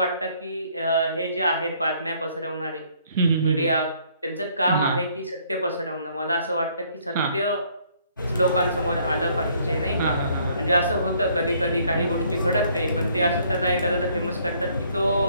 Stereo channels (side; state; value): both; inverted; correlation -0.64